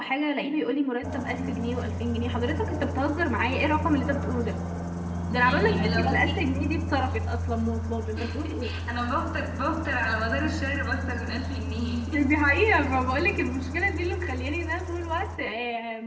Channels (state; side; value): identical; both; correlation 1.00